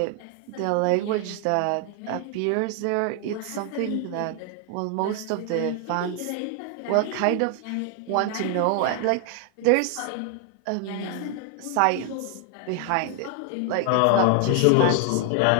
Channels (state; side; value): different; both; correlation 0.00